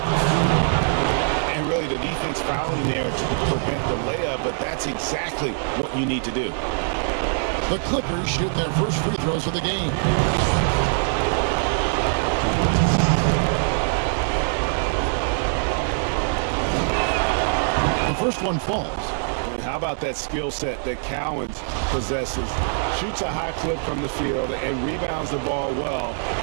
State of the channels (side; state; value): left; silent; digital silence